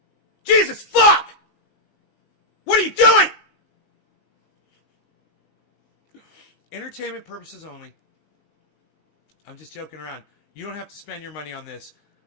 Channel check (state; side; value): late; right; 19 ms